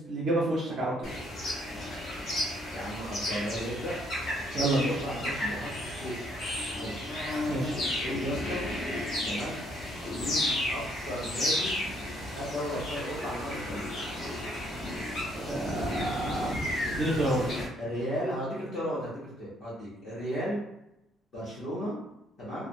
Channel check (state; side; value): normal; both; correlation 0.68